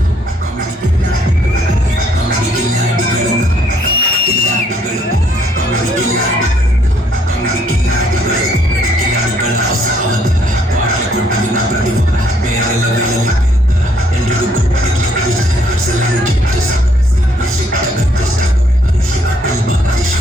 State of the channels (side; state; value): both; normal; correlation 0.67